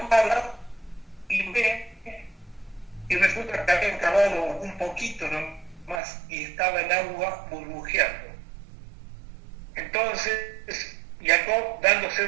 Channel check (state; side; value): drops out; left; at 6.0 s